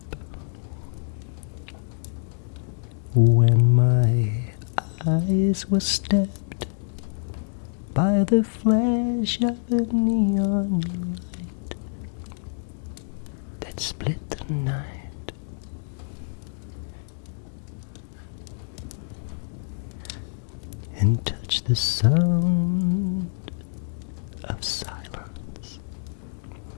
when my eyes were stabbed by the flash of a neon light that split the night. And touch the sound of silence.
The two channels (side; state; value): right; silent; digital silence